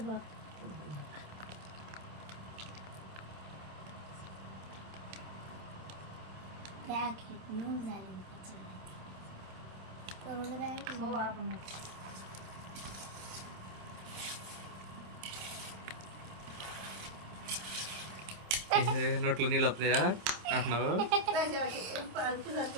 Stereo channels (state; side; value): late; left; 27 ms